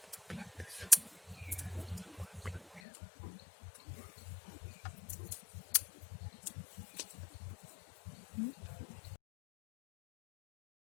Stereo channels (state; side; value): drops out; right; at 2.8 s